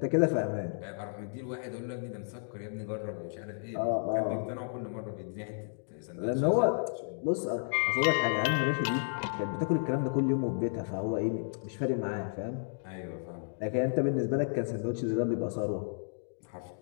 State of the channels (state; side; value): silent; right; digital silence